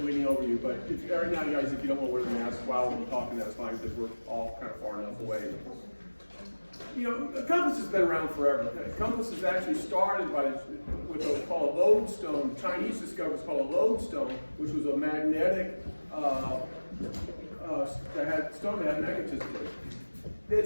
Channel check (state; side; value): inverted; both; correlation -1.00